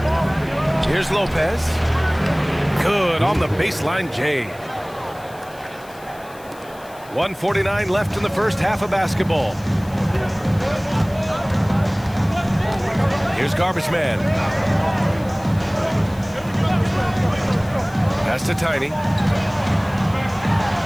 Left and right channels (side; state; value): left; noise; hiss, 24 dB below the sound